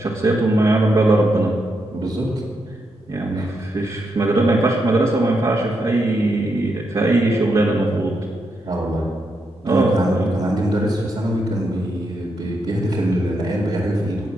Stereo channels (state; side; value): normal; both; correlation 0.82